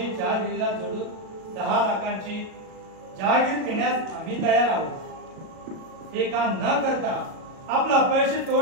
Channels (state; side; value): late; left; 37 ms